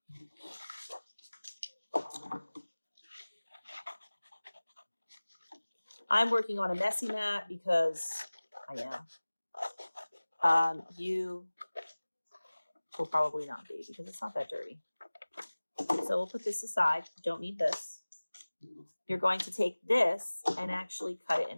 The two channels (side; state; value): both; inverted; correlation -1.00